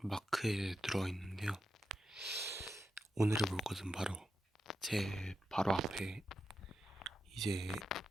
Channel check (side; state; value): both; normal; correlation 0.86